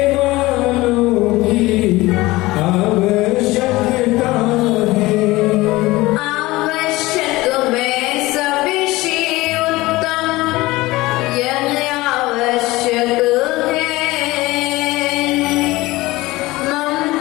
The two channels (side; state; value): right; quieter; 19.8 dB